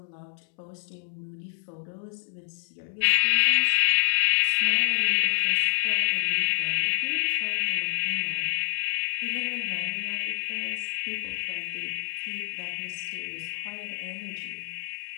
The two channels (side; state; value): right; silent; 60 dB below the other